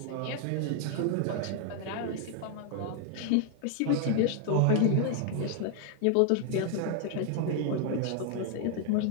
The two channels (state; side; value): different; both; correlation 0.00